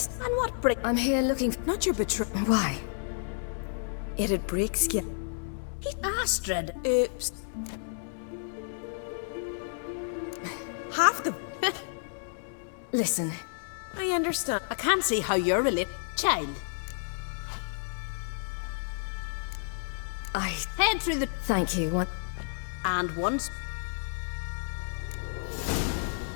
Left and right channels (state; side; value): silent; right; digital silence